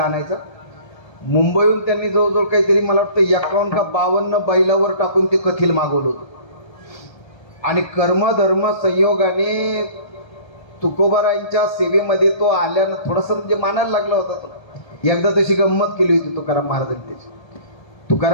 आणायचा. मुंबईहून त्यांनी जवळजवळ काहीतरी मला वाटतं 51 का 52 बैलावर टाकून ते कथिल मागवलं होतं. आणि कर्मधर्म संयोगाने तुकोबरायांच्या सेवेमध्ये तो आल्यानं थोडंसं म्हणजे मानायला लागला होता तो. एकदा तशी गंमत केली होती तुकाराम महाराजांनी त्याची.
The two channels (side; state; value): right; late; 1.3 ms